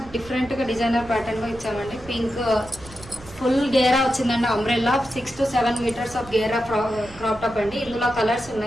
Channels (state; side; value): noise; right; rumble, 19 dB below the sound